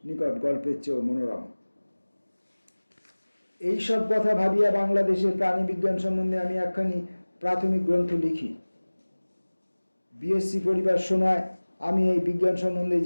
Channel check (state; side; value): inverted; both; correlation -1.00